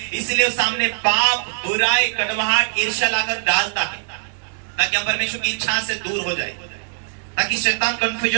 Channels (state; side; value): silent; left; digital silence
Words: इसलिए सामने पाप, बुराई, कड़वाहट, ईर्ष्या लाकर डालता है, ताकि हम परमेश्वर की इच्छा से दूर हो जाए, ताकि शैतान